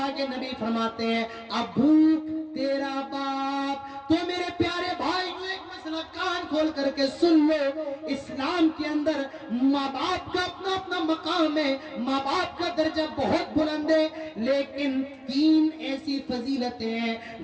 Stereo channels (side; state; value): both; identical; correlation 1.00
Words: کے نبی فرماتے ہیں ابوک, تیرا باپ. تو میرے پیارے بھائی ایک مسئلہ کان کھول کر کے سن لو, اسلام کے اندر ماں باپ کا اپنا اپنا مقام ہے, ماں باپ کا درجہ بہت بلند ہے, لیکن 3 ایسی فضیلتیں ہیں